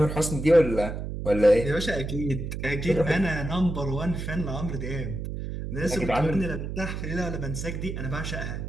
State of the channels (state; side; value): noise; right; hum, 5 dB below the sound